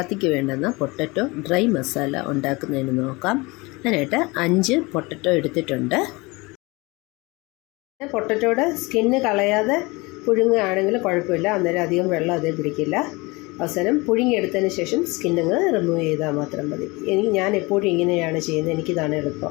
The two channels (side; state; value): right; quieter; 24.6 dB